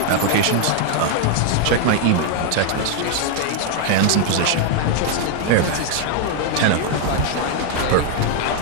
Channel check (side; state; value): both; different; correlation 0.00